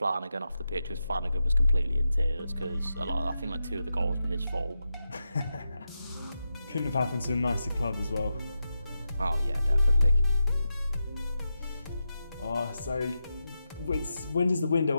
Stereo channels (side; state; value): both; inverted; correlation -0.89